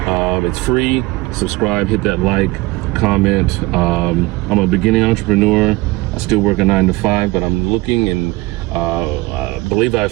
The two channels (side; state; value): left; quieter; 21.0 dB